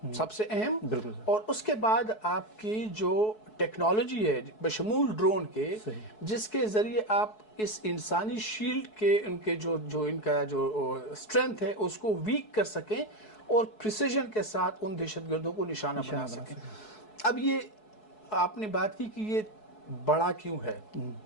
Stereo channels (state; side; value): late; right; 4.7 ms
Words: سب سے اہم، اور اس کے بعد آپ کی جو ٹیکنالوجی ہے بشمول ڈرون کے، جس کے ذریعے آپ اس انسانی شیلڈ کے ان کا جو اسٹرینتھ ہے اس کو ویک کر سکیں اور پریسیجن کے ساتھ ان دہشت گردوں کو نشانہ بنا سکیں۔ اب یہ آپ نے بات کی کہ یہ بڑا کیوں ہے.